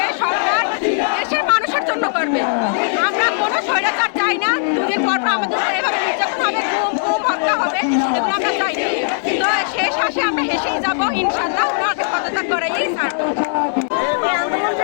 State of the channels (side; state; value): right; silent; digital silence